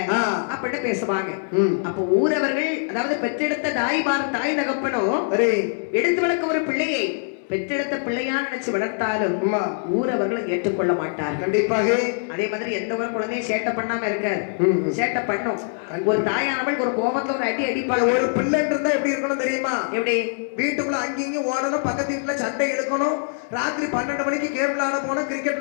அப்படின்னு பேசுவாங்க. அப்ப ஊரவர்கள், அதாவது பெற்றெடுத்த தாய் தகப்பனும் எடுத்து வளர்க்க ஒரு பிள்ளையை பெற்றெடுத்த பிள்ளையா நினைச்சு வளர்த்தாலும் ஊரவர்கள் ஏற்றுக்கொள்ள மாட்டார். கண்டிப்பாக. அதே மாதிரி எந்த ஒரு குழந்தையும் சேட்டை பண்ணாம இருக்காது, சேட்டை பண்ணும். ஒரு தாயானவள் ஒரு கோபத்துல ஒரு அடி அடிப்பாங்க. ஒரு பிள்ளைன்னு இருந்தா எப்படி இருக்கணும் தெரியுமா? எப்படி? வீட்டுக்குள்ள அங்கேயும் ஓடணும், பக்கத்து வீட்டுல சண்டை எடுக்கணும், ராத்திரி 12 மணிக்கு கேம் விளையாட போனோம், கிரிக்கெட்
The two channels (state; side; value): silent; right; 63 dB below the other